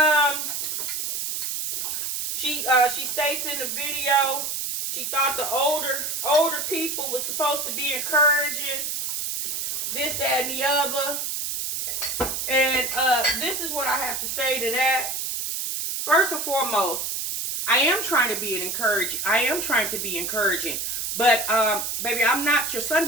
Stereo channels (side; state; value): right; noise; hiss, 2 dB below the sound